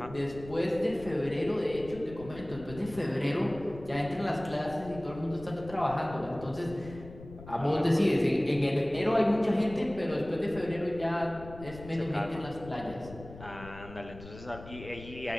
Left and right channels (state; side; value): noise; left; rumble, 15 dB below the sound